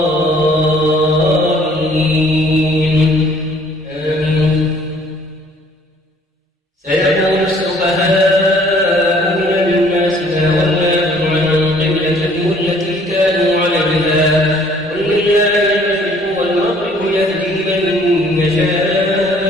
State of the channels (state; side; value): normal; both; correlation 0.58